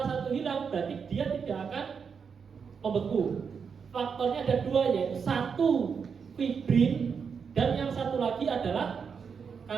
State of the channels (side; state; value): left; quieter; 6.2 dB